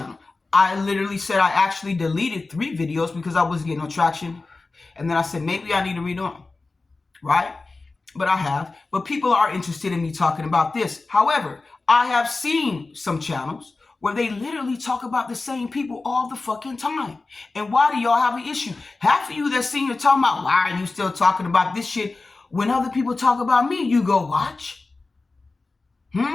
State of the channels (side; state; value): right; quieter; 3.6 dB